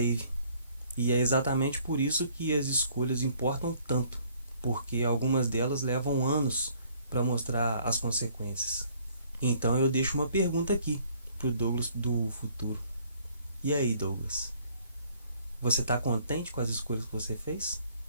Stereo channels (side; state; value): both; inverted; correlation -0.60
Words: E é exatamente por isso que as escolhas importam tanto. Porque algumas delas levam anos para mostrar as consequências. Então eu deixo uma pergunta aqui pro Douglas do futuro. E aí, Douglas? Você está contente com as escolhas que você fez?